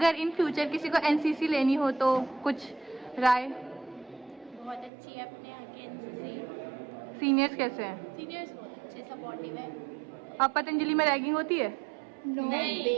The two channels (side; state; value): left; drops out; at 4.9 s